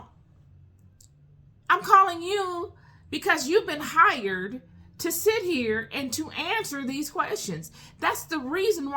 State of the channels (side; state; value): both; identical; correlation 1.00